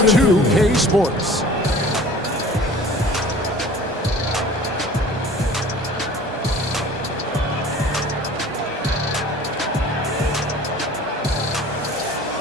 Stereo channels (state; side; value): normal; both; correlation 0.45